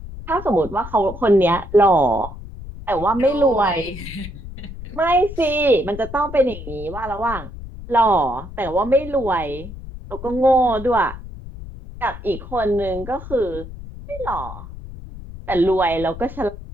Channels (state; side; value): noise; left; rumble, 12 dB below the sound